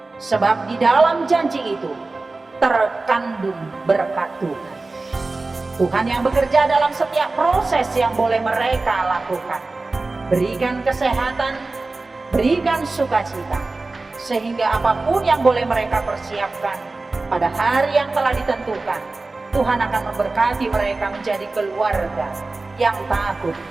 Sebab di dalam janji itu terkandung berkat Tuhan. Tuhan yang bekerja dalam setiap proses yang boleh mereka lakukan. Berikan kesehatan, berikan sukacita, sehingga apapun yang boleh mereka persiapkan pada hari yang telah ditentukan, Tuhan akan memberkati mereka menjadi keluarga yang takut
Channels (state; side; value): quieter; left; 3.4 dB